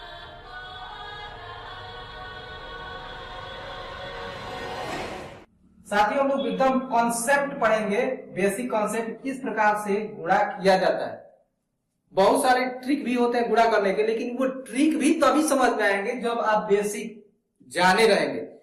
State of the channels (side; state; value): both; identical; correlation 1.00